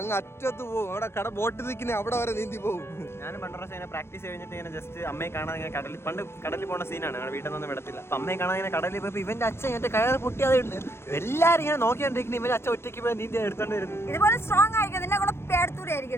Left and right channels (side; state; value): right; late; 0.12 ms